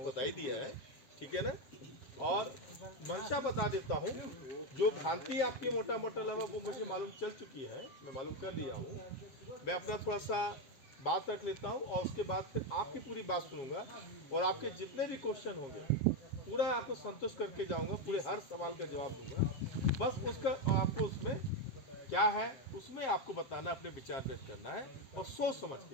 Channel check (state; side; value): late; right; 7.4 ms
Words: बता ही दिया है, ठीक है ना। और मंशा बता देता हूँ, जो भ्रांति आपकी मोटा मोटा लगा वो मुझे मालूम चल चुकी है, मैं मालूम कर लिया हूँ। मैं अपना थोड़ा सा बात रख लेता हूँ और उसके बाद फिर आपकी पूरी बात सुनूंगा और आपके जितने भी क्वेश्चन होंगे पूरा आपको संतुष्ट करके जाऊंगा, पूरे हर सवाल का जवाब दूंगा। बस उसका आपको उसमें क्या है उसमें आपको बताना, अपने विचार व्यक्त करना है और सोच समझ